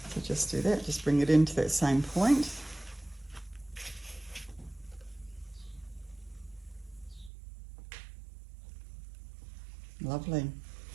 So just do that, just bring it into that same point. Lovely.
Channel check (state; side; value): drops out; left; at 7.3 s